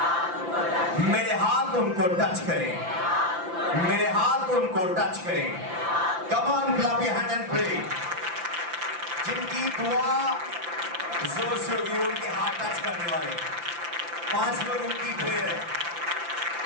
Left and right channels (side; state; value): left; late; 5.9 ms